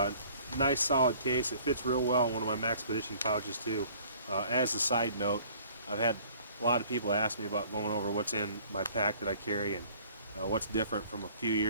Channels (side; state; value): both; inverted; correlation -0.54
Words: Nice solid case. It fits real well in one of my Maxpedition pouches too. As a side note, I've had a lot of people ask me about going over what's in my pack that I carry and what's different from a few